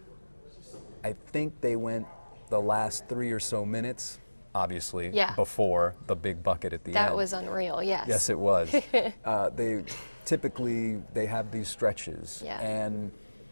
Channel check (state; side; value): inverted; both; correlation -1.00